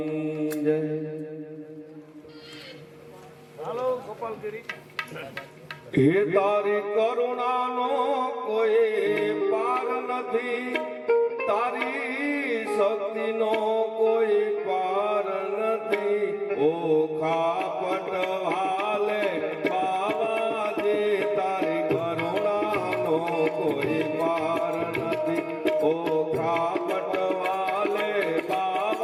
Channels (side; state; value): both; identical; correlation 1.00